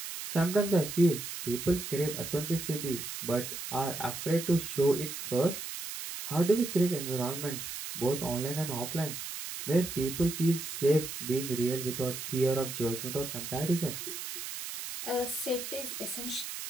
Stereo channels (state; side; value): noise; right; hiss, 7 dB below the sound